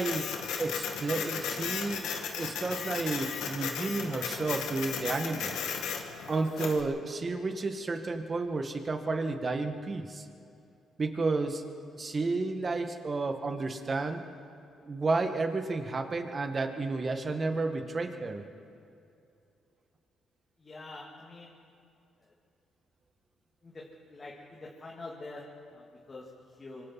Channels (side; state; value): both; normal; correlation 0.85